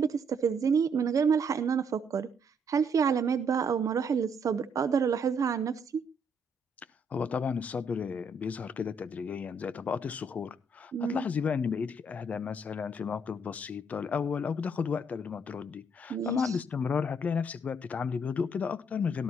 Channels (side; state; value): both; normal; correlation 0.70